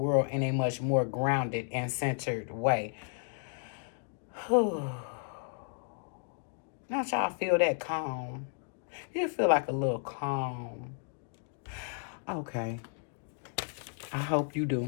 in a much more grounded and centered way. Don't y'all feel that calm? You feel like a little calm. Okay. I hope you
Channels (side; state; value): right; silent; 56 dB below the other